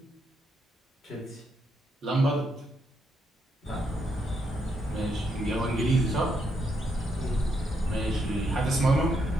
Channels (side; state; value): both; normal; correlation 0.78